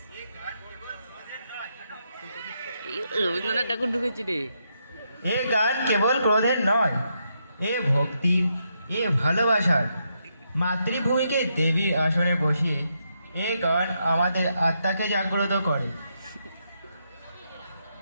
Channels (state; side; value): inverted; both; correlation -0.80